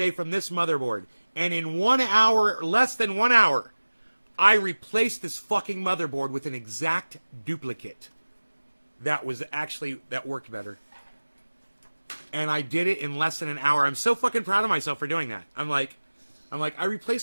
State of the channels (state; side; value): inverted; both; correlation -1.00